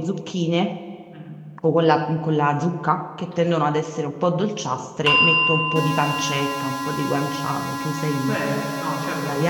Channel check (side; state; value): both; identical; correlation 1.00